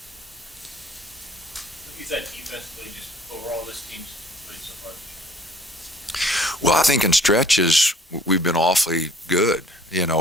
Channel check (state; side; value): normal; both; correlation 0.55